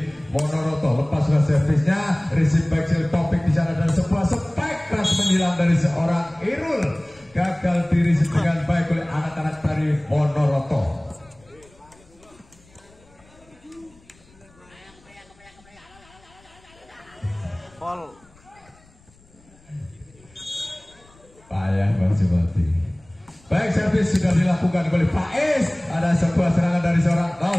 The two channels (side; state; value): left; noise; rumble, 29 dB below the sound